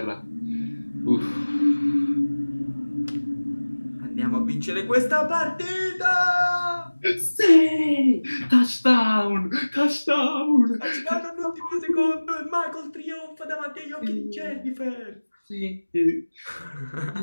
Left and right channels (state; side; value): inverted; both; correlation -1.00